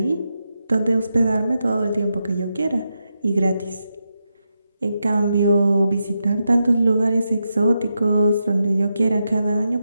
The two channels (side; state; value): both; inverted; correlation -0.86